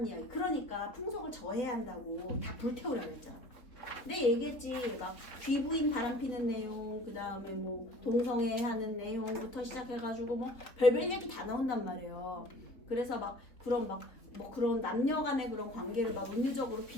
이야기. 그러니까 풍속을 저해야 한다고 다 불태우라고 했죠. 내 얘기했지. 막 귀부인 바람피는 내용, 그 다음에 뭐 동성애 하는 내용부터 시작해가지고 뭐 별별 얘기 다 나온단 말이에요. 그래서 막 그런 막 뭐 그런 남녀 간의 그런 관계를 막 은유적으로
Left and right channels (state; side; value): late; right; 3.5 ms